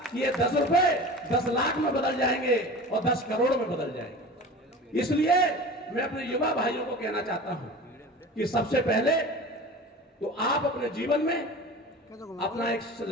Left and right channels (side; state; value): both; normal; correlation 0.36